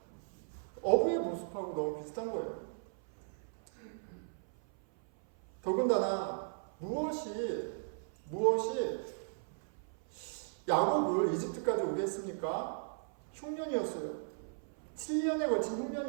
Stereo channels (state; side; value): silent; left; 53 dB below the other